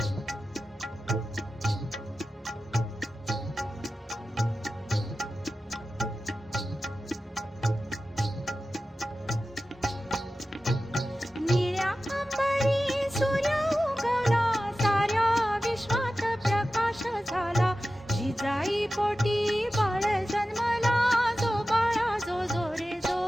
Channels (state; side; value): normal; both; correlation 0.94